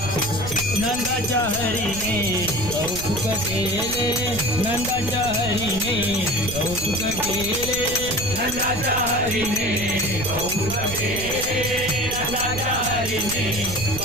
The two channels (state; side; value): noise; right; rumble, 9 dB below the sound